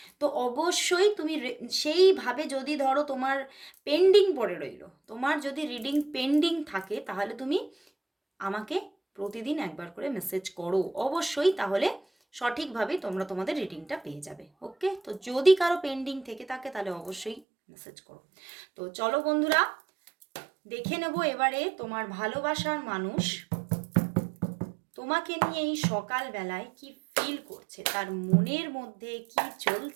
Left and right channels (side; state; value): left; drops out; at 17.4 s